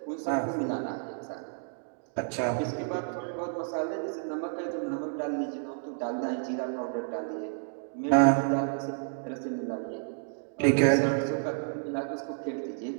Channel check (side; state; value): left; silent; digital silence